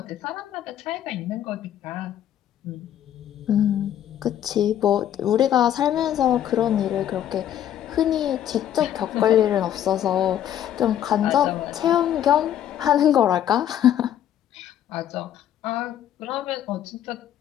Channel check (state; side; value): quieter; right; 10.8 dB